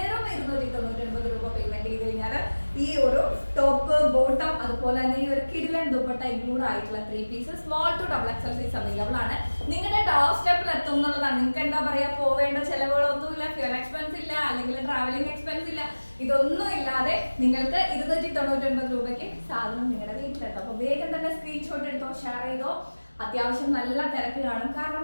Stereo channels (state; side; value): inverted; both; correlation -1.00